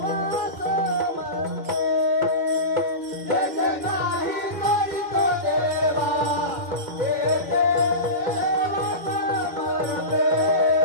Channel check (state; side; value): late; left; 2.1 ms